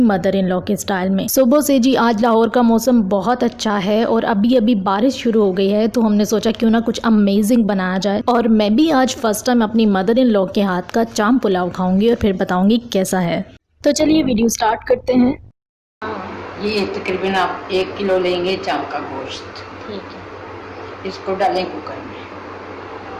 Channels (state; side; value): identical; both; correlation 1.00